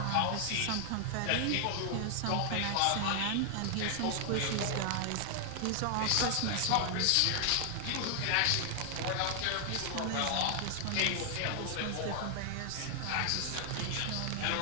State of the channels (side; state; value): both; different; correlation 0.00